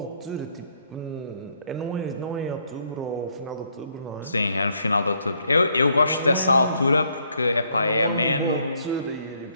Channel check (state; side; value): inverted; both; correlation -0.70